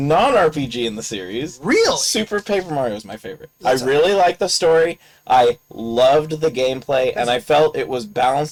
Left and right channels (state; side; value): identical; both; correlation 1.00